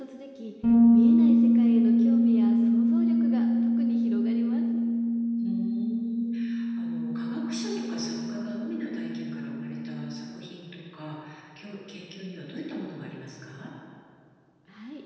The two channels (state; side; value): identical; both; correlation 1.00